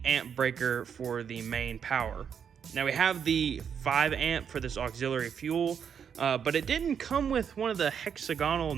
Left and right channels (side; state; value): left; quieter; 7.5 dB